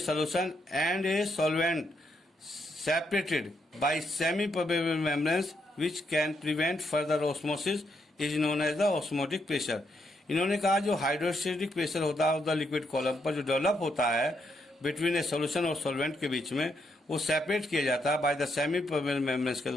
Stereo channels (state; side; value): normal; both; correlation 0.77